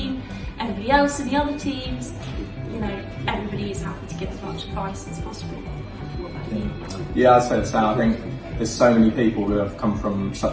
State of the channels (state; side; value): identical; both; correlation 1.00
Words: everybody else in the other teams, everybody is happy to give as much advice as possible. What about you? Yeah, I'd say the same. I think there's so many people who have come from